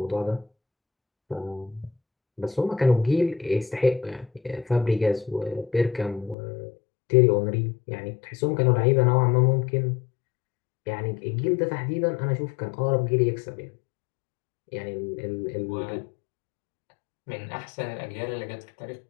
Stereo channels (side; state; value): right; drops out; at 6.4 s